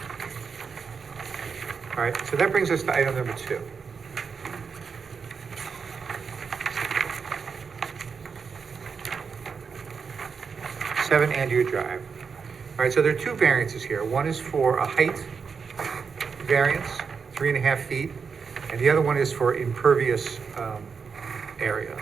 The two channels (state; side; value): quieter; left; 5.7 dB